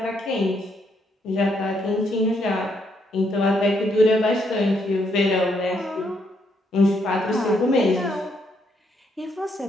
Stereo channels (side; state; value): both; normal; correlation 0.74